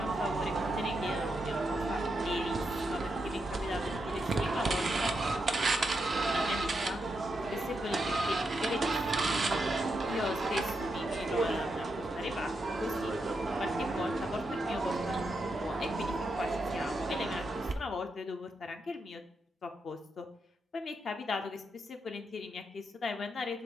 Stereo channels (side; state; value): both; normal; correlation 0.84